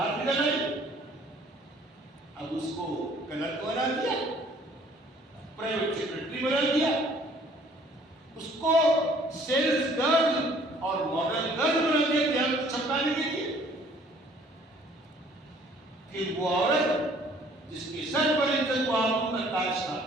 نکل آئی. اب اس کو کلرک بنا دیا, پرائیویٹ سیکرٹری بنا دیا, اس کو سیلز گرل اور ماڈل گرل بنا دیا دھیان چھپانے کے لیے. پھر وہ عورت جس کے سر پر عزت و آبرو کا تاج تھا,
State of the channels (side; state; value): both; normal; correlation 0.57